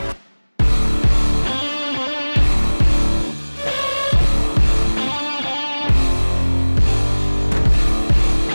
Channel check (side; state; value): both; inverted; correlation -1.00